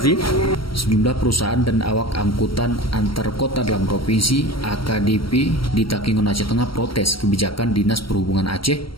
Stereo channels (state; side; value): late; right; 0.74 ms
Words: Sejumlah perusahaan dan awak angkutan antar kota dalam provinsi AKDP di Takengon Aceh Tengah protes kebijakan Dinas Perhubungan Aceh